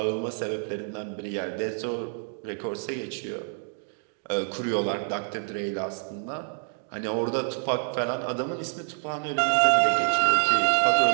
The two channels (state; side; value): silent; left; 58 dB below the other